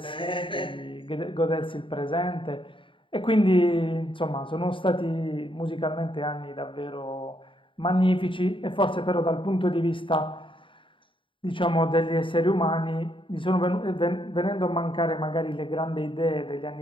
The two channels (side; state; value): right; late; 0.25 ms